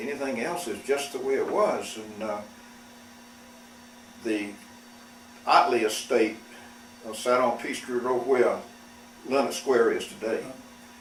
anything else. It's just the way it was. And the Otley estate sat on Peachtree Road where Leonard Square is today.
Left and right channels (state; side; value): identical; both; correlation 1.00